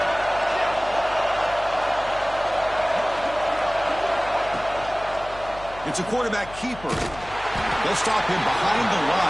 It's a quarterback keeper. They'll stop him behind the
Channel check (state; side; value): noise; left; hum, 17 dB below the sound